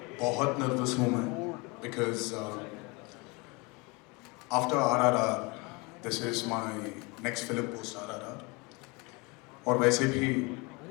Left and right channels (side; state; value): right; quieter; 27.6 dB